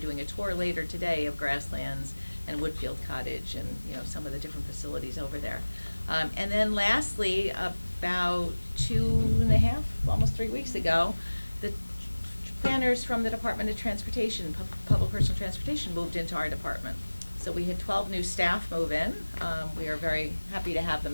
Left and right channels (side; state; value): both; inverted; correlation -1.00